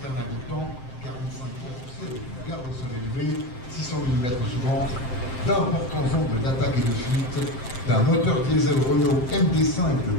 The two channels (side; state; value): right; late; 7.7 ms